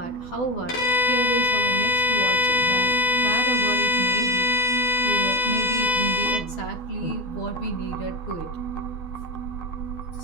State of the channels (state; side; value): late; right; 12 ms